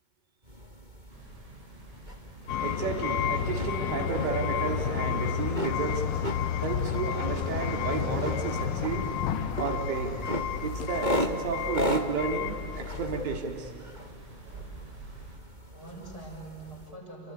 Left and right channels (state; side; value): late; left; 2.2 ms